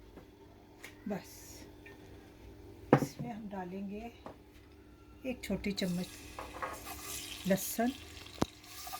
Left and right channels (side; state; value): both; identical; correlation 1.00